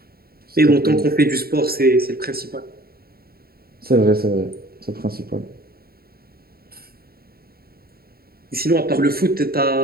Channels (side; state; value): left; late; 0.44 ms